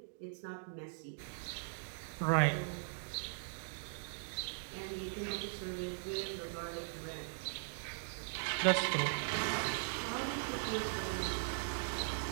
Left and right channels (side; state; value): left; silent; digital silence